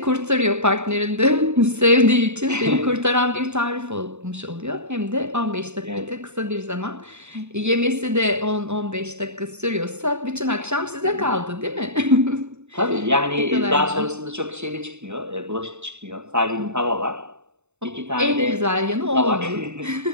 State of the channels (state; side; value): late; left; 0.82 ms